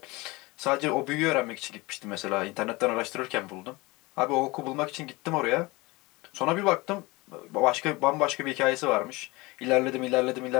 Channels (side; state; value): right; quieter; 23.2 dB